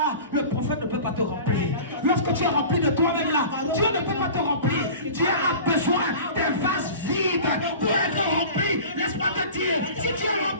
le prophète ne peut pas te remplir. Lorsque tu es rempli de toi-même là, Dieu ne peut pas te remplir. Dieu a besoin des vases vides pour être rempli. Laisse-moi te dire, si tu es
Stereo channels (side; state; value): both; inverted; correlation -0.38